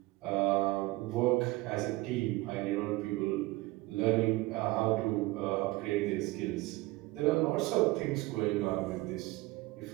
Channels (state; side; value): quieter; left; 20.4 dB